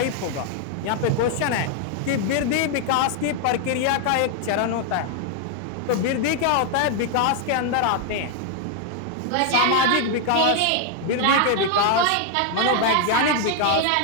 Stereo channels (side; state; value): both; different; correlation 0.00